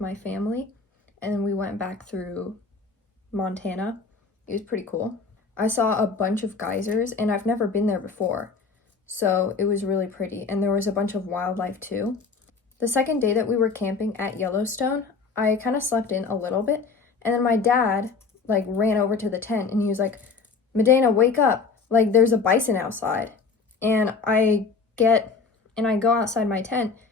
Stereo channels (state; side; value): quieter; right; 4.7 dB